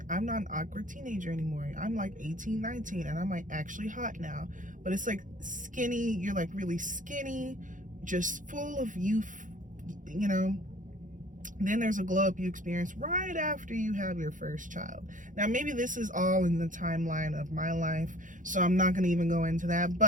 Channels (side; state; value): left; late; 0.38 ms